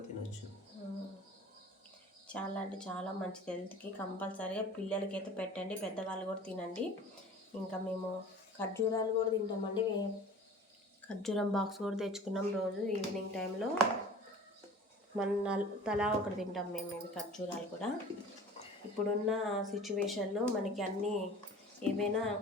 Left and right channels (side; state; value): both; normal; correlation 0.43